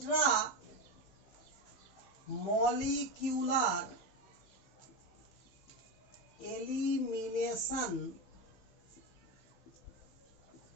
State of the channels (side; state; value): right; late; 15 ms